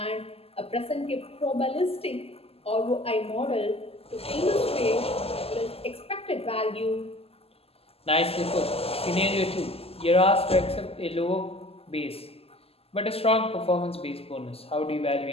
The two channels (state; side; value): late; right; 0.29 ms